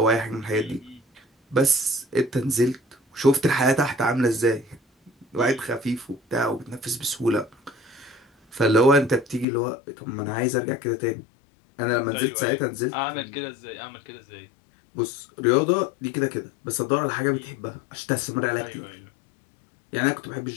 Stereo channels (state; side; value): drops out; right; at 9.5 s